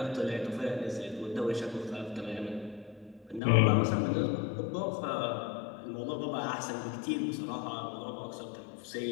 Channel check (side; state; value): right; drops out; at 3.4 s